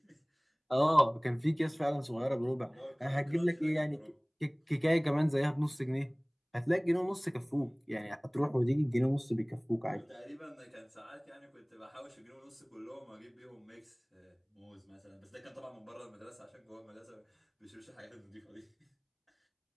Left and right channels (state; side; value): identical; both; correlation 1.00